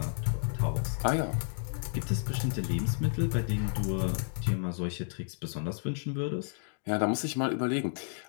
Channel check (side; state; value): right; silent; digital silence